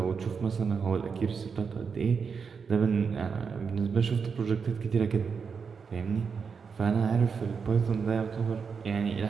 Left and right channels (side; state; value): left; quieter; 5.8 dB